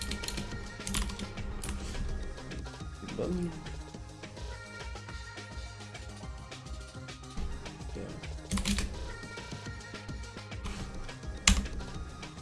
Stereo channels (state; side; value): identical; both; correlation 1.00